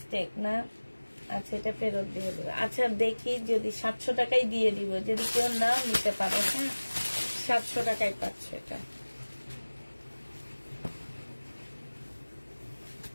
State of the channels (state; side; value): inverted; both; correlation -1.00